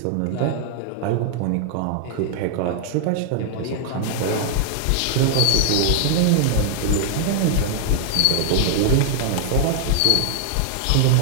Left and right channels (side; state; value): both; different; correlation -0.01